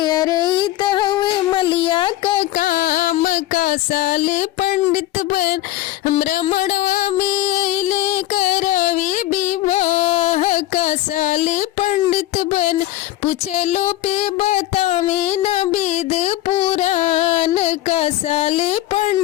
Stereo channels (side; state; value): right; quieter; 14.8 dB